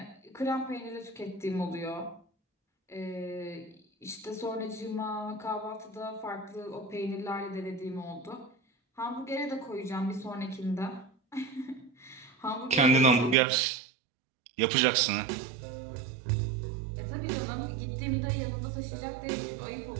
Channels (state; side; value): drops out; left; at 13.4 s